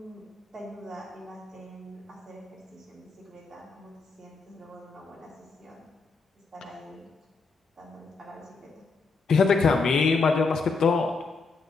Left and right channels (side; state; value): right; quieter; 4.3 dB